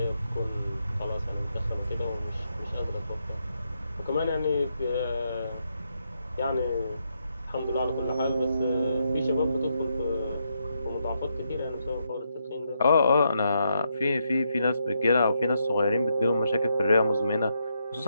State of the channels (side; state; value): both; inverted; correlation -0.80